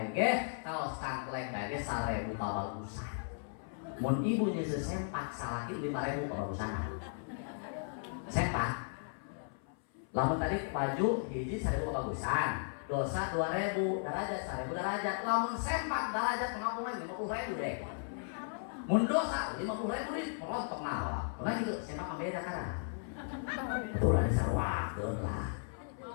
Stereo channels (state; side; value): silent; right; 54 dB below the other